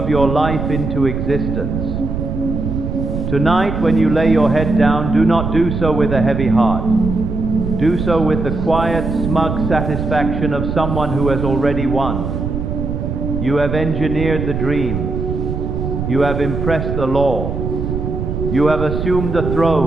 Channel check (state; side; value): noise; right; rumble, 3 dB below the sound